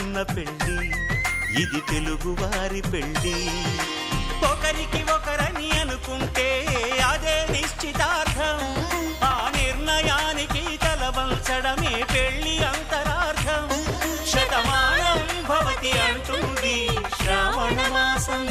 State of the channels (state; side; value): identical; both; correlation 1.00